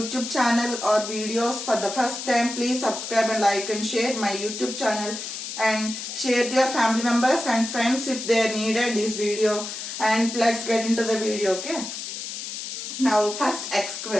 channel or videos for the first time, please subscribe and like and share my YouTube channel and share to your family members and friends if they needed this video. And let's get into the video. Okay. Now first x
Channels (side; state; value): left; noise; hiss, 7 dB below the sound